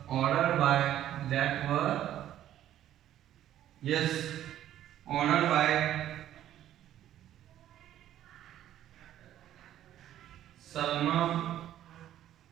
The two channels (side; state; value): left; quieter; 12.0 dB